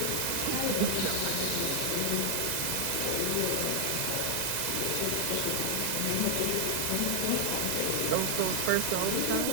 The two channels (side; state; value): both; different; correlation 0.00